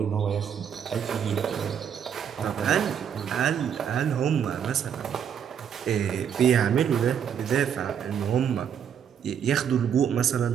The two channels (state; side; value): quieter; left; 8.3 dB